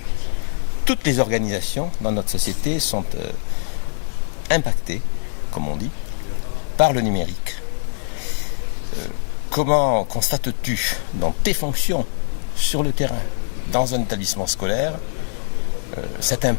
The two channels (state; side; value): silent; right; digital silence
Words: Toutes les organisations dans notre société sont impactées, comme on dit, par le numérique. Comment constates-tu dans tes fonctions sur le terrain, dans un établissement scolaire, cet